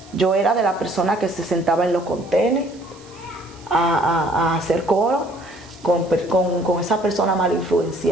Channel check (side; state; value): right; noise; hiss, 25 dB below the sound